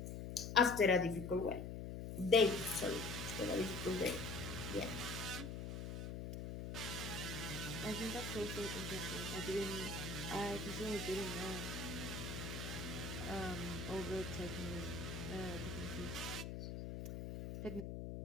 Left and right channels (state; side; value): noise; left; hum, 6 dB below the sound